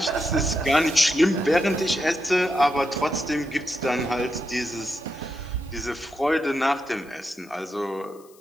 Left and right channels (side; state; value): left; noise; hiss, 27 dB below the sound